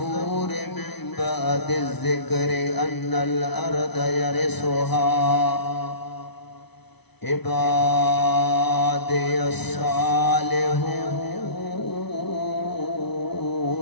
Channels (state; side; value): late; right; 0.99 ms